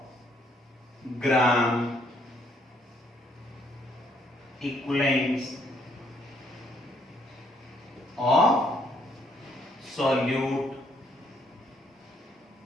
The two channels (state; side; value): normal; both; correlation 0.69